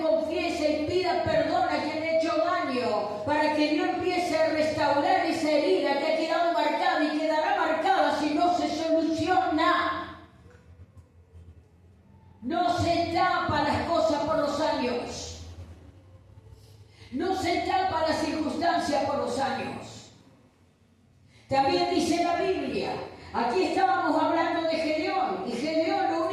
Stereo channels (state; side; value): identical; both; correlation 1.00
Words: confiesa y pida perdón a quien le ha hecho daño, para que Dios empiece a restaurar esa herida que ha quedado marcada y quedará marcada si no se soluciona. No se tapa las cosas por los años. No se tapa las circunstancias por los años. También dice la Biblia, aquí estábamos hablando de Gedeón, y Gedeón lo